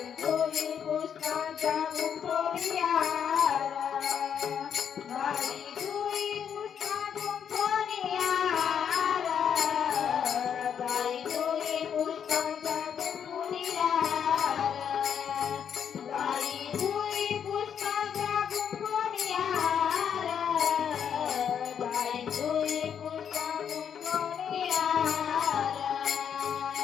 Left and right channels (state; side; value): quieter; right; 8.1 dB